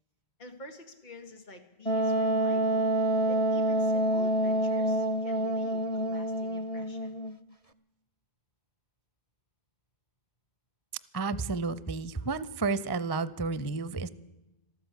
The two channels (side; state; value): right; late; 1.1 ms